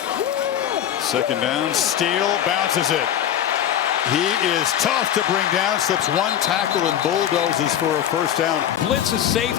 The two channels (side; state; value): right; quieter; 10.5 dB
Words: Second down, Steele bounces it. He is tough to bring down, slips one tackle and bulldozes for a first down. Blitz is